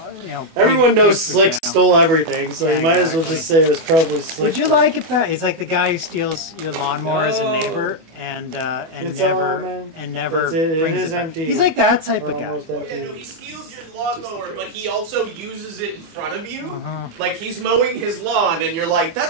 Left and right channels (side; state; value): left; late; 24 ms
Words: Everyone big knows pictures, Slick stole everything, so Yeah, you might as well exactly. just say it was probably Slick. Would you like it back? He's like the guy who steals your lawnmower as a neighbor and It's never all, man. and never That's it. It brings is back. empty. He's like that type We're of guy. almost Oh, empty. yeah, no, he steals your lawnmower, but he also uses it in front of you. Uh-huh. Like he's mowing his lawn, and you're like,